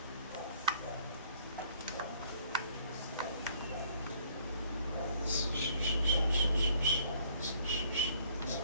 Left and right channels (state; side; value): inverted; both; correlation -0.60